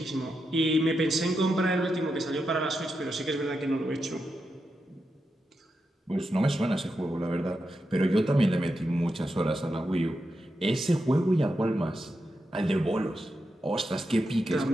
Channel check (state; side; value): normal; both; correlation 0.87